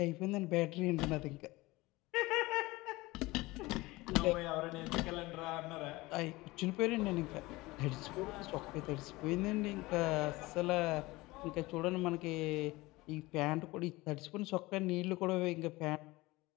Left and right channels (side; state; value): right; quieter; 20.8 dB